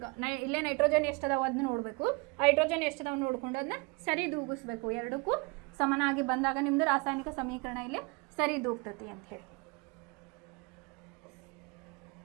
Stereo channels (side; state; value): left; quieter; 28.6 dB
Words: ಇಲ್ಲೇ ನೈಟ್ರೋಜನ್ ಎಷ್ಟದಾವ ಅದನ್ನ ನೋಡಬೇಕು, ಹೈಡ್ರೋಜನ್ ಎಷ್ಟದಾವ ನೋಡ್ಕೊಂಡು ಅದನ್ನ ಸರಿ ದೂಗಿಸ್ಬೇಕು. ಎರಡಕ್ಕೂ ಸಮನಾಗಿ ಬಂದಾಗ ನಿಮ್ದು ರಾಸಾಯನಿಕ ಸಮೀಕರಣ ಇಲ್ಲಿ ಸರಿ ದೂಗ್ತತಿ ಅಂತ ಹೇಳಿ.